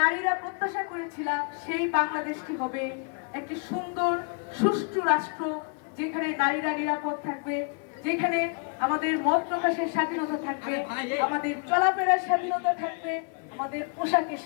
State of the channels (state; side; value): quieter; right; 38.6 dB